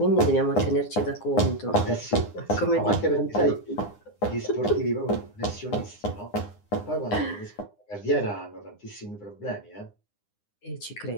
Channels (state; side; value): late; right; 9.8 ms